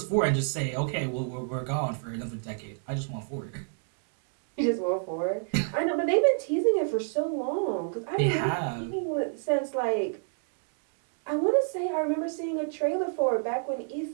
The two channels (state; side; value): silent; left; digital silence